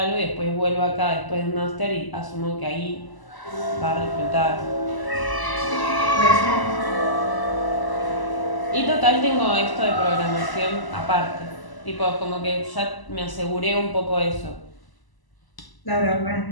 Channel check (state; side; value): late; right; 1.0 ms